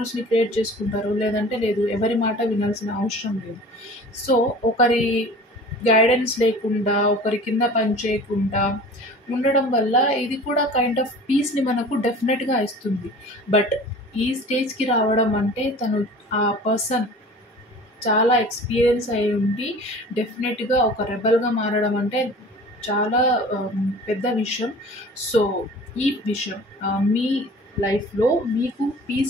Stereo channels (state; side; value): normal; both; correlation 0.43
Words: క్రియేట్ చేసుకుంటారు. లేదంటే లేదు. ఎవరి మాట వినాల్సిన అవసరం లేదు. సో, ఒకరి గైడెన్స్ లేకుండా, ఒకరి కింద పని చేయకుండా ఉండడం వల్ల ఇది కూడా కైండ్ ఆఫ్ పీస్‌ని మనకు డెఫినెట్‌గా ఇస్తుంది. బట్ ఈ స్టేజ్‌కి రావడం అంటే ఆ పర్సన్ చాలా ఎక్స్‌పీరియన్స్ అయ్యి ఉండి డెఫినెట్‌గా ఒక రెబెల్‌గా మారడం అంటే చాలా పెద్ద విషయం. సో, ఈ విషయం మీ లైఫ్‌లో మీకు